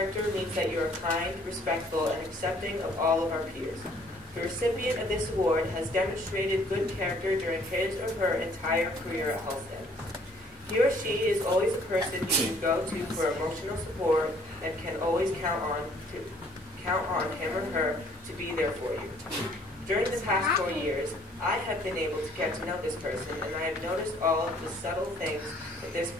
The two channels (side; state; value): both; normal; correlation 0.60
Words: means that you are kind, respectful, and accepting of all of our peers. The recipient of this award has demonstrated good character during his or her entire career at Holsted. He or she is always a person you can go to for emotional support and can always count on him or her to be there for you. During the past 4 years, I have been able to get to know this person, and I have noticed all of the subtle things that this